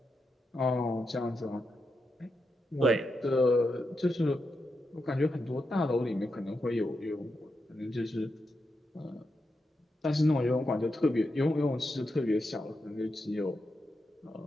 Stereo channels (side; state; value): both; normal; correlation 0.86